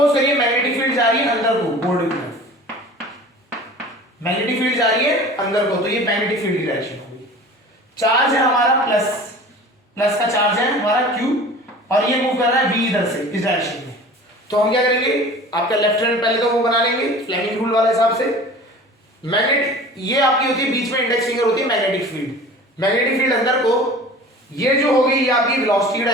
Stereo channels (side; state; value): both; normal; correlation 0.41